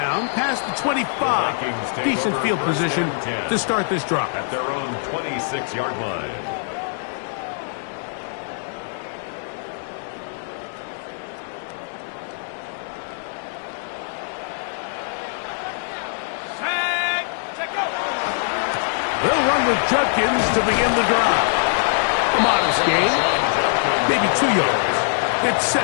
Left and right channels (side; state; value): right; silent; digital silence